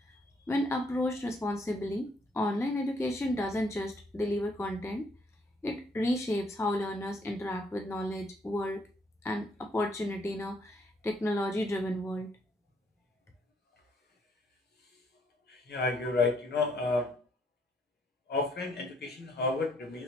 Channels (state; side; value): normal; both; correlation 0.69